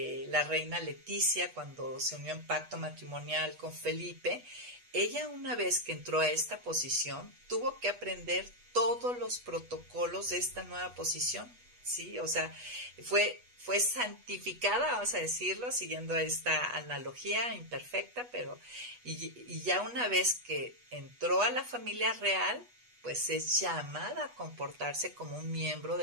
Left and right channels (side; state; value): left; late; 8.2 ms